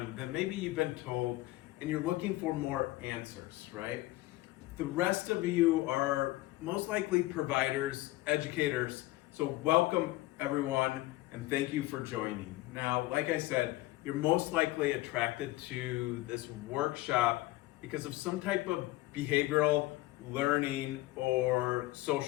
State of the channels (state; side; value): quieter; right; 18.5 dB